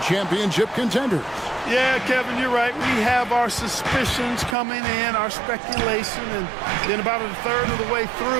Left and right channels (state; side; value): drops out; left; at 4.5 s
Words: championship contenders. Yeah, Kevin, you're right. We have our suspicions coming in, our speculation, and then about a third of the way